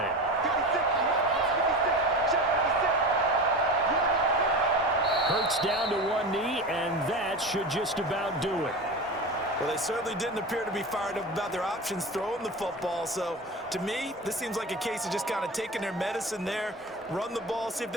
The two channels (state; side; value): normal; both; correlation 0.28